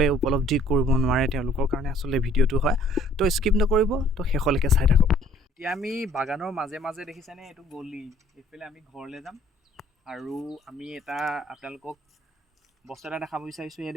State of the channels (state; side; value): normal; both; correlation 0.59